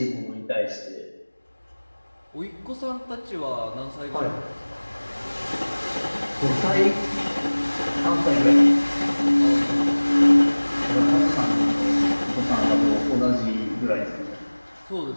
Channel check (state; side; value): inverted; both; correlation -1.00